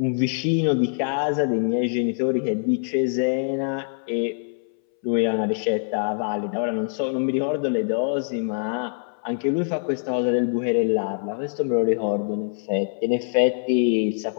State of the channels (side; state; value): right; silent; 61 dB below the other